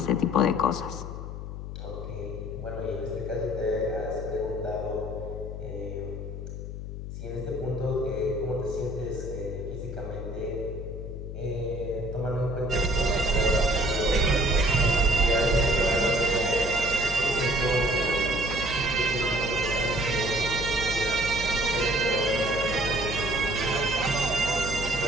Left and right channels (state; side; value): noise; left; hum, 8 dB below the sound